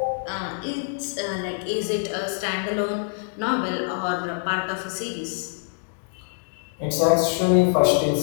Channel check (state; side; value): silent; right; digital silence